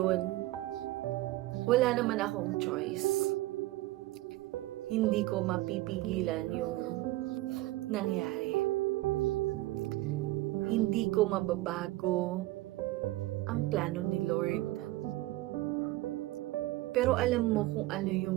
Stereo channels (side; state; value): left; quieter; 17.9 dB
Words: wala naman akong choice. Hindi ko mapipigilan yung nangyari. Hindi ko mababago ang plano ni Lord. Pero alam mo kung ano